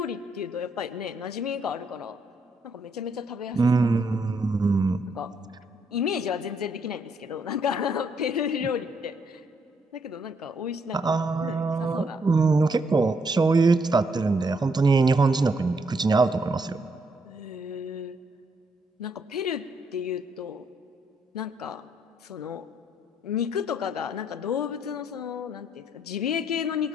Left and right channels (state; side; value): normal; both; correlation 0.73